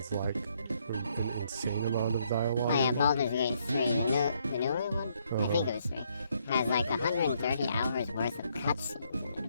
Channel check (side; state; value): both; inverted; correlation -0.72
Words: like an insane amount of dialogue. Oh yeah, Baldur's Gate 3, the newer one? I think it was 3. Has like 130 hours worth of cutscenes in